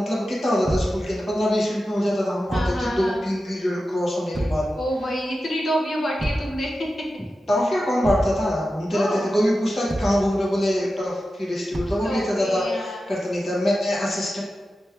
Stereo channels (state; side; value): normal; both; correlation 0.92